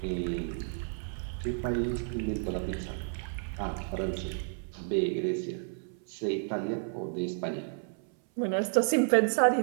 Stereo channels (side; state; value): left; silent; 57 dB below the other